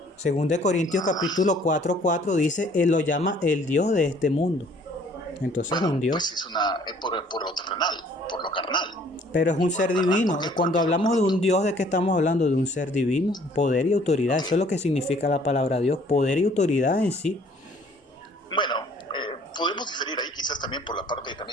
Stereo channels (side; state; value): both; normal; correlation 0.57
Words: Según de Corintios capítulo 4:4 dice, él lo llama el Dios de este mundo. Entonces es Bueno, un Dios. pues es por lo terrenal, por lo carnal. Pero es un ser divino. Cuando hablamos de un Dios, ¿de qué estamos hablando? De un ser divino, poder y autoridad. Eso es lo que significa la palabra Dios, poder y autoridad en sí. Bueno, podemos diferir ahí quizás también por la parte